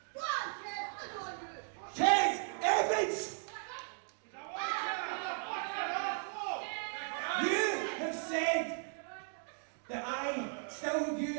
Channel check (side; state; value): left; silent; 53 dB below the other